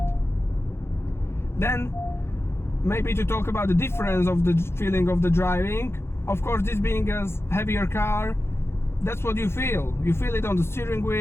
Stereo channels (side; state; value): right; late; 0.12 ms